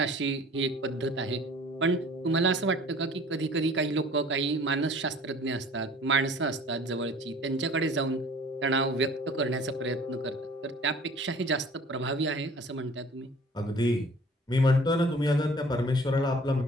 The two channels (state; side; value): normal; both; correlation 0.49